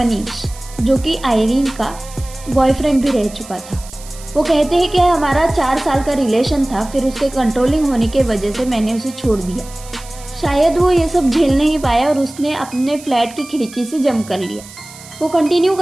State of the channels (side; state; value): right; noise; hiss, 18 dB below the sound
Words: जो कि आयरीन का बॉयफ्रेंड भी रह चुका था। वो कहते हैं कि हमारा 4 साल का रिलेशन था, फिर उसके कंट्रोलिंग होने की वजह से मैंने उसे छोड़ दिया। शायद वो ये सब झेल नहीं पाया और उसने अपने फ्लैट की खिड़की से जंप कर लिया। वो कंटिन्यू